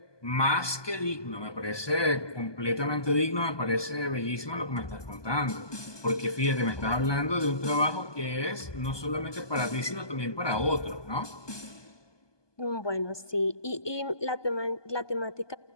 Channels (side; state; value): right; late; 1.2 ms